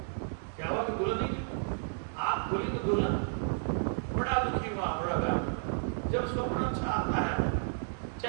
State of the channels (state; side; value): silent; left; digital silence